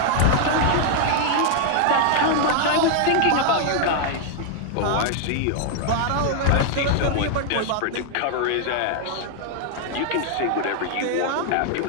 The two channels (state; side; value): different; both; correlation 0.00